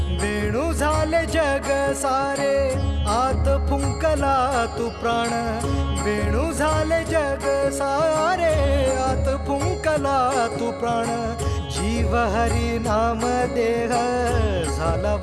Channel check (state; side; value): identical; both; correlation 1.00